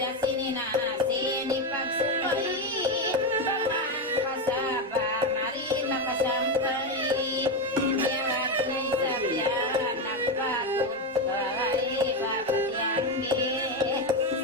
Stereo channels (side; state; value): both; normal; correlation 0.11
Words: sininasin ipagsupay pamang kasaba marina kasampay yarat na isabyan nagpatod patiyay papatiyanggi